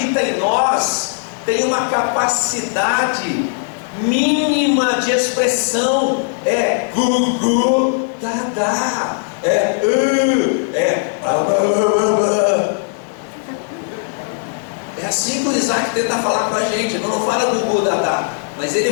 em nós tem uma capacidade mínima de expressão. É gu, dá, é assim que o Isaac tenta falar com a gente. Ele não fala gu, dá, mas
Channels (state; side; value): silent; right; digital silence